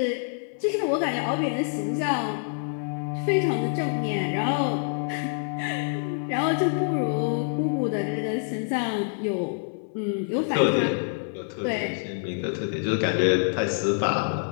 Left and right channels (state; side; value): silent; right; 61 dB below the other